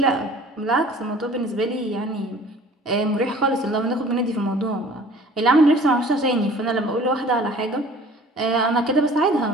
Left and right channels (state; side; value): normal; both; correlation 0.49